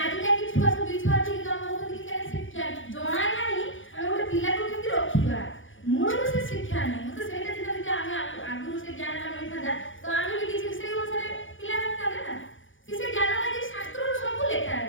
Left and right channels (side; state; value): right; late; 0.57 ms